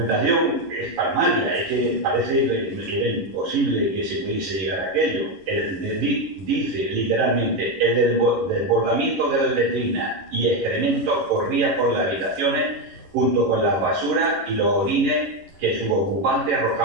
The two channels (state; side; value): late; left; 11 ms